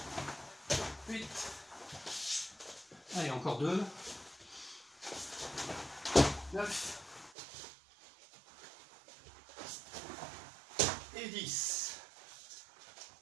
8. Allez, encore 2. 9. Et 10.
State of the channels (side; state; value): left; drops out; at 7.3 s